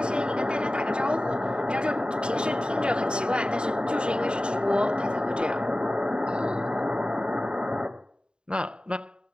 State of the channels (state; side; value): late; left; 0.051 ms